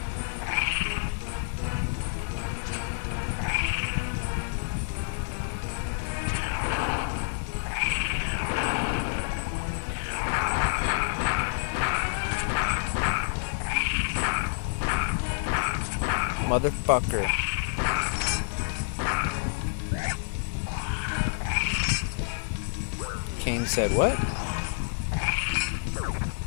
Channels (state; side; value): silent; right; digital silence